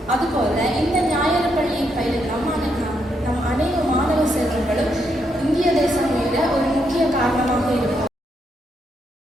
அதுபோல இந்த ஞாயிறு பள்ளியை பயிலும் நம் அனைத்து மாணவ செல்வங்களும் இந்திய தேசம் மீத ஒரு முக்கிய காரணமாக இருக்கும்.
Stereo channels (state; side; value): normal; both; correlation 0.78